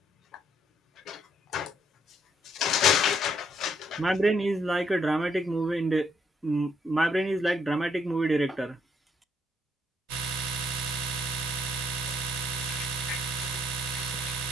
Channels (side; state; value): both; normal; correlation 0.70